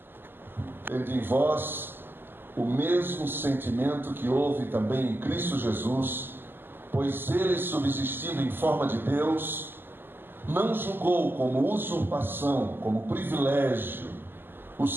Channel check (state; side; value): late; left; 0.097 ms